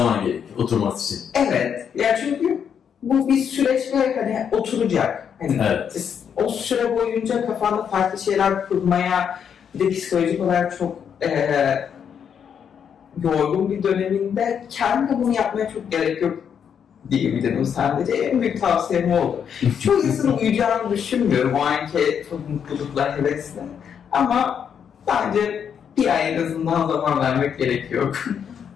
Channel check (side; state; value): right; quieter; 7.8 dB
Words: gerekiyor oturması için. Evet. Ya çünkü bu bir süreç ve hani oturacak. Hani evet. O süre boyunca kafanda farklı şeyler kurmaya, bir de psikolojik olarak çok yorgun bir döneminde kendine bunu yapmaya çok gerek yok diyebilirim sadece. En büyük tavsiyem oldu. Çoğu insanın uyuyacağını düşünmüyorum o anki çok mutlulukla, hevesle. Ama bence bir ay en azından zaman vermek gerekiyor.